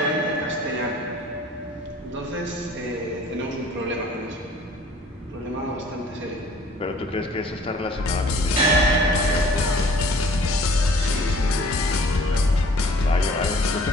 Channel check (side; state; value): both; normal; correlation 0.52